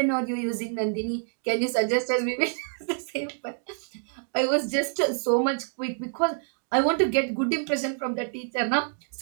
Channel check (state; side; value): silent; left; 60 dB below the other